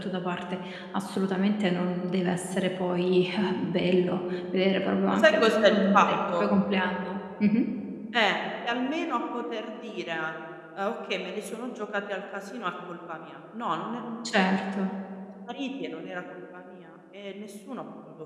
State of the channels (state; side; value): identical; both; correlation 1.00